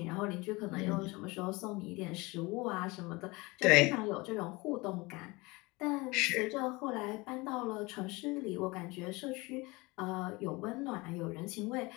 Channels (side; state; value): right; quieter; 24.0 dB